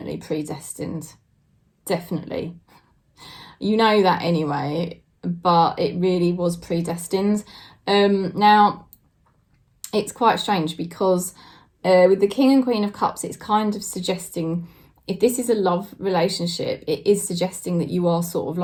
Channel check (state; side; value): identical; both; correlation 1.00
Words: predestined. Definitely. You know that anyway, but it really was predestined. Now, it's quite strange because with the King and Queen of Cups, it's kind of suggesting, if this is a love relationship, it is suggesting that you are sort of